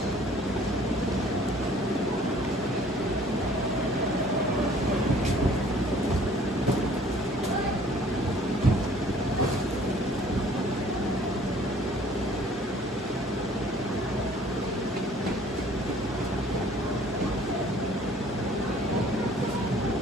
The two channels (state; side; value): normal; both; correlation 0.55